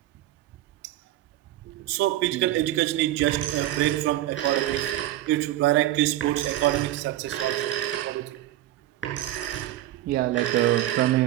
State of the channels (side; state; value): left; quieter; 14.3 dB